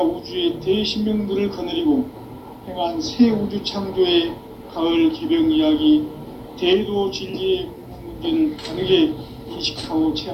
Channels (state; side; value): identical; both; correlation 1.00